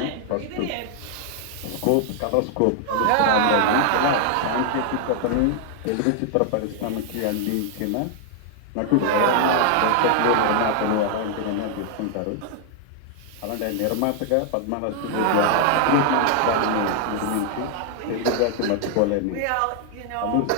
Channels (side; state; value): both; different; correlation 0.00